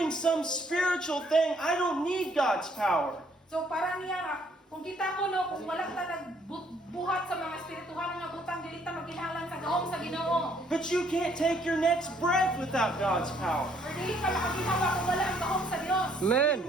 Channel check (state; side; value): normal; both; correlation 0.65